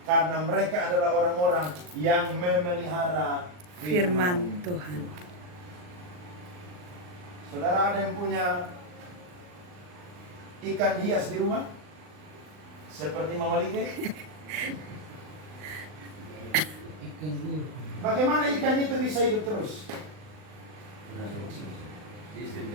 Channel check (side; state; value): left; late; 39 ms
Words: karena mereka adalah orang-orang yang memelihara Firman Tuhan. Saudara ada yang punya ikan hias di rumah? Seperti Mama Like? Bagaimana ikan itu bisa hidup terus?